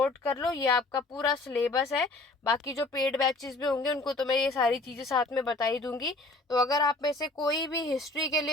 कर लो, ये आपका पूरा सिलेबस है। बाकी जो पेड बैचेस भी होंगे उनको तो मैं ये सारी चीज़ें साथ में बता ही दूंगी। तो अगर आप में से कोई भी हिस्ट्री के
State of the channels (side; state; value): right; quieter; 3.1 dB